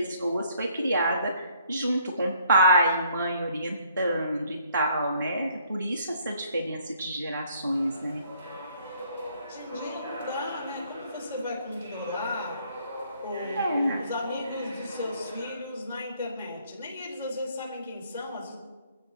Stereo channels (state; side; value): inverted; both; correlation -0.64